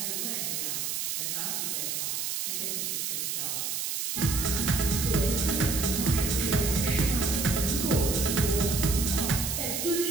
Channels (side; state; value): right; noise; hiss, 1 dB below the sound